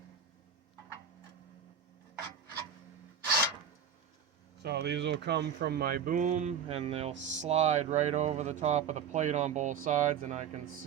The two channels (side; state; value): left; quieter; 7.6 dB